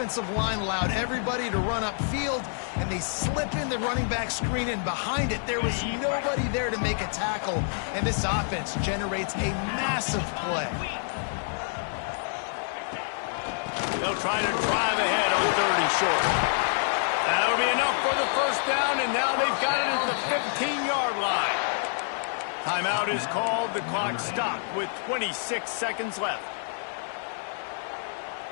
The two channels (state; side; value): silent; right; digital silence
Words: line allowed everybody to run upfield, and they slip in the running back screen, and behind it there was nobody there to make a tackle, and this offense generates a massive play. They'll try to drive ahead on 3rd and short. That'll be enough for the 1st down, and now they've got it at the 15-yard line. Timeout is called. The clock stopped with 26 seconds left.